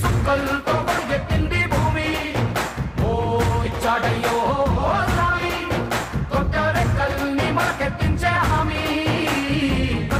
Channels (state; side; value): identical; both; correlation 1.00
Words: సుక్కలతో గొడుగెత్తింది భూమి ఓ ఇచ్చాడయ్యో స్వామి కొత్త రెక్కల్ని మొలకెత్తించే హామీ